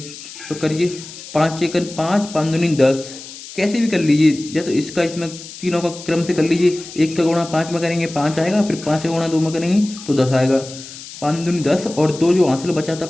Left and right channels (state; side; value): noise; left; hiss, 14 dB below the sound